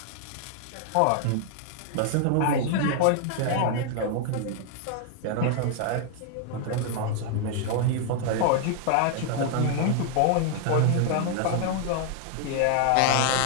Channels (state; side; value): different; both; correlation 0.00